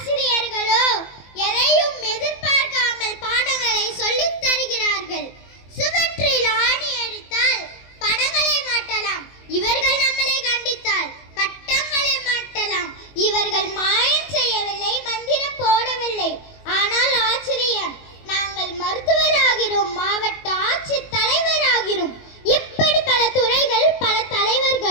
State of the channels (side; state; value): right; late; 21 ms